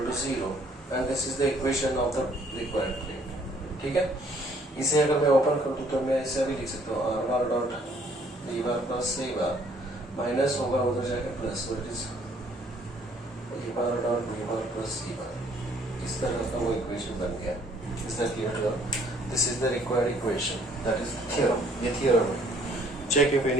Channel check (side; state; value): both; normal; correlation 0.62